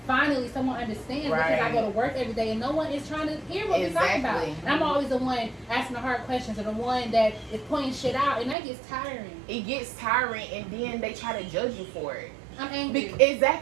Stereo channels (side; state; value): left; drops out; at 8.6 s